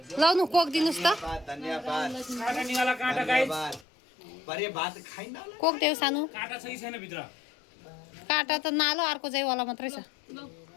लाउनु कोक दिनुहोस् त कोक देऊ सानो काँटा त नालो अर्को चाहिँ वाला मात्रै छ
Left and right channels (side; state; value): right; drops out; at 3.9 s